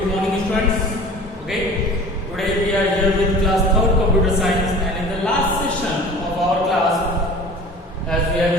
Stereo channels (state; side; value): normal; both; correlation 0.42